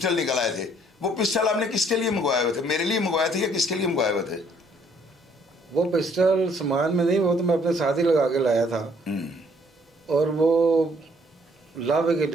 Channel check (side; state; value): both; normal; correlation 0.63